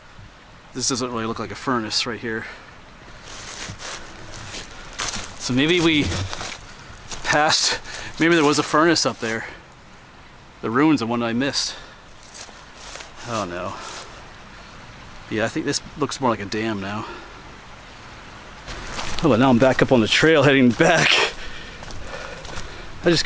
This doesn't really look like a furnace right here. So maybe we passed, maybe there was a furnace up there. The ruins of one I missed. Oh no. Yeah, I think this looks more like a dam now. Oh, but now I'm back up on the trail heading back. I just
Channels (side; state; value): both; identical; correlation 1.00